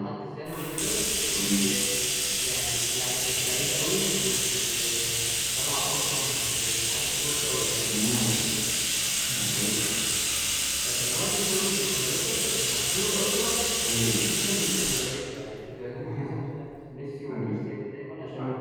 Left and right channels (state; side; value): identical; both; correlation 1.00